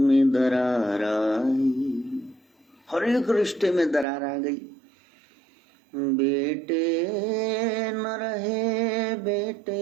दरार आई, हर एक रिश्ते में दरार आ गई। बेटे न रहे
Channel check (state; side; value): drops out; left; at 4.0 s